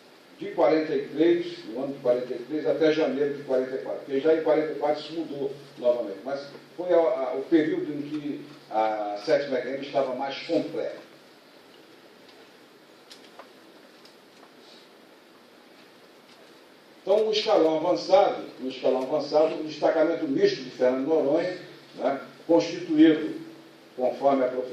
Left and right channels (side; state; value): both; identical; correlation 1.00